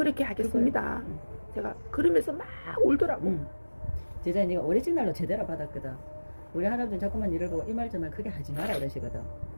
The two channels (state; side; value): inverted; both; correlation -1.00